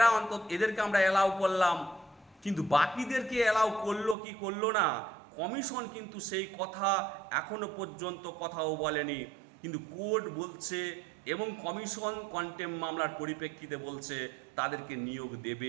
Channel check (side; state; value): left; drops out; at 4.2 s